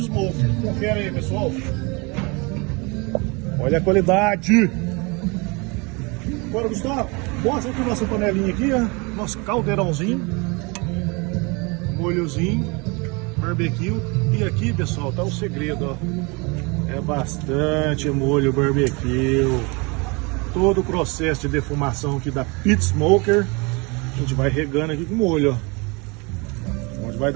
Smoker. Confere aí, pessoal. Olha a qualidade. Agora, Gustavo, mostra aqui nossa panelinha aqui, ó. Nosso caldeirãozinho, molhozinho, barbecue. E aqui, pessoal, tá o segredo, ó. É bastante molho barbecue. Todo o processo de defumação aqui da Pit Smoker. A gente vai regando aqui com molho, ó. Onde vai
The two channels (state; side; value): quieter; left; 28.5 dB